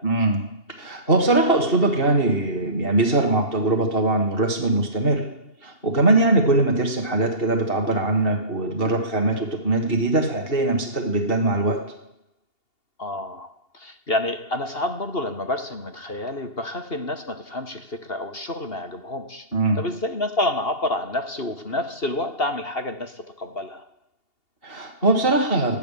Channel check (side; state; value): right; late; 2.8 ms